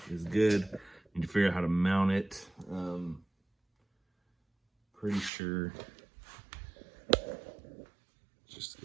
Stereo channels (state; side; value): drops out; left; at 5.3 s